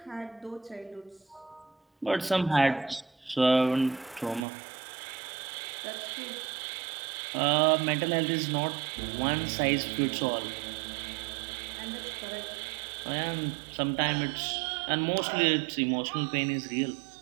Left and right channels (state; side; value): drops out; left; at 4.5 s